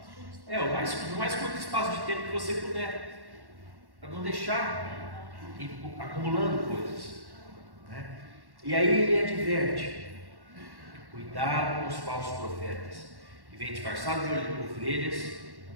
o mais curto espaço de tempo que você puder, para não deixar acumulando coisas, E aí ele adverte: cuidado com os falsos profetas, que vêm disfarçados de ovelhas,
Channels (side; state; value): left; late; 1.1 ms